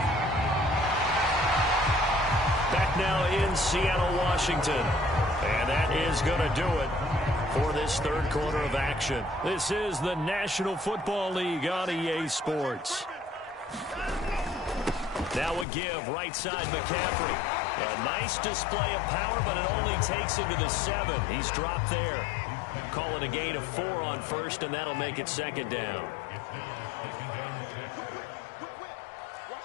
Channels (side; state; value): right; drops out; at 15.7 s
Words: Back now in Seattle, Washington. And that is going to do it for this 3rd quarter of action. This is the National Football League on EA Sports. Now a give, right side McCaffrey. A nice display of power, but it only takes him to the 7. He's dropped there. Call it a gain of 4 on 1st, and that'll make it 2nd down.